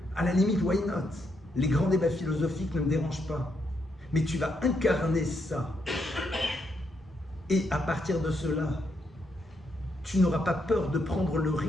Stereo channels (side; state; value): both; normal; correlation 0.78